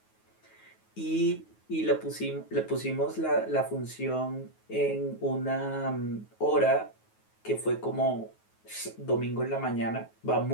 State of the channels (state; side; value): late; right; 9.3 ms